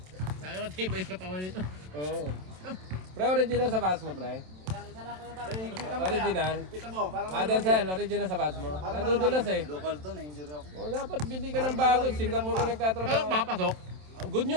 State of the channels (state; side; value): late; left; 27 ms